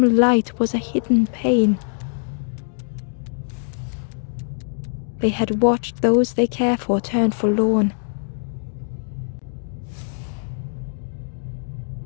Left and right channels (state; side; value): silent; right; digital silence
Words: light was a hidden pain. They had watched those they care for turn forlorn.